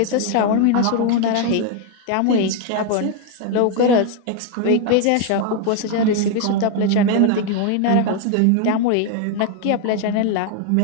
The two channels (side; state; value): both; different; correlation 0.01